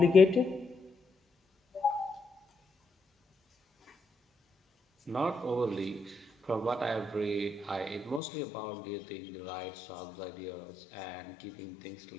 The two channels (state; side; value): drops out; right; at 8.2 s